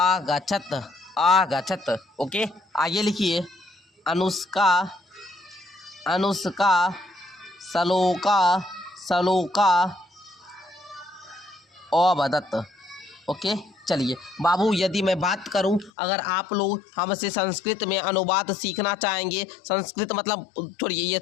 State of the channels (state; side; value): drops out; right; at 15.9 s